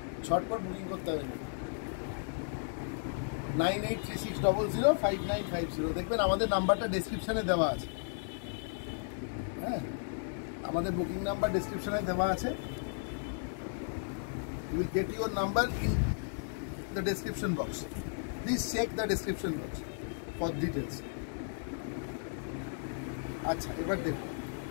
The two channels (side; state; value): right; silent; digital silence